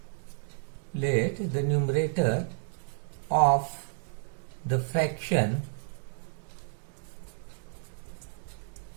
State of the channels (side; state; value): left; silent; digital silence